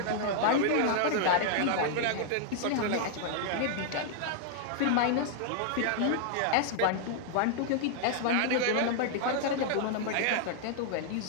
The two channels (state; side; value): different; both; correlation -0.01